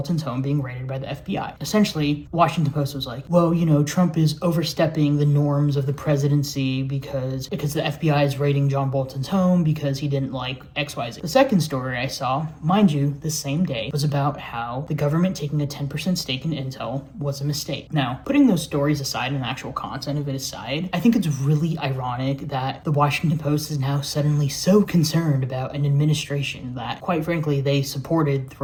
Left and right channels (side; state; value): both; identical; correlation 1.00